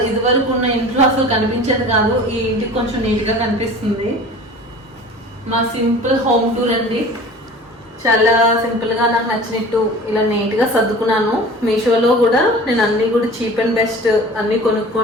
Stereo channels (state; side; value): normal; both; correlation 0.41